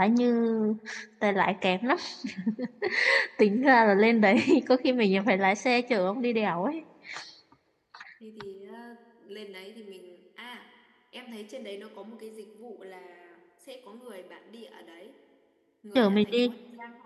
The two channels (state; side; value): identical; both; correlation 1.00